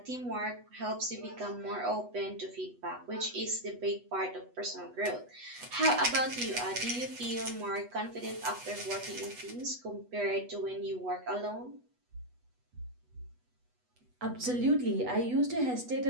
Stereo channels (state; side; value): late; left; 8.1 ms